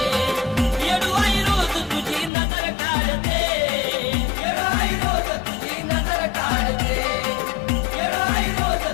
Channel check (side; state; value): right; drops out; at 2.3 s